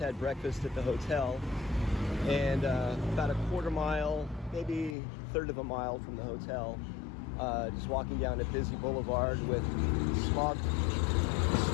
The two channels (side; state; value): right; drops out; at 5.0 s